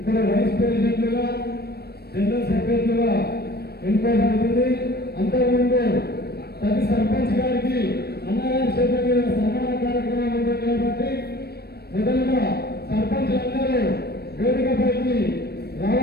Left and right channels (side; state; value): right; late; 0.47 ms